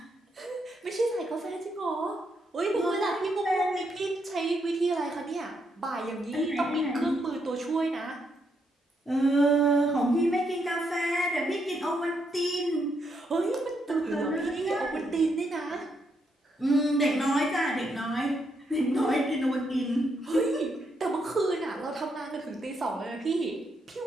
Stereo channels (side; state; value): both; normal; correlation 0.78